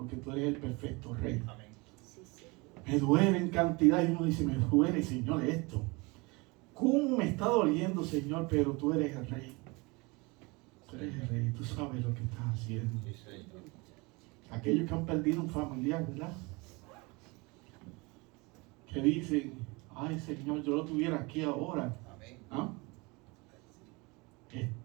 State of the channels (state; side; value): quieter; left; 26.4 dB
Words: tú eres el perfecto rey. Amén. Me duele en cantidad, y uno dice: me duele, Señor, esto. ¿Cómo me está doliendo, Señor? Pero tú eres el rey. Tú eres el rey, tú sabes lo que estás haciendo. Aquellos que han perdido un familiar, ¿verdad? Que dicen: ay, Señor, yo lo tuviera aquí ahora. ¿Ah? Es